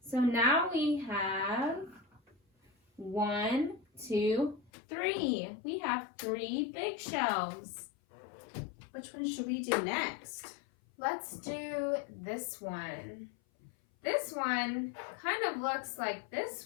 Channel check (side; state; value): right; drops out; at 4.7 s